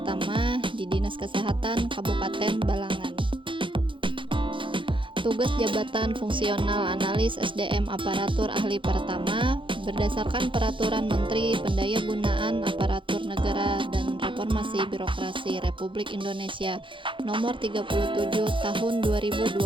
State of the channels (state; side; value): late; left; 0.24 ms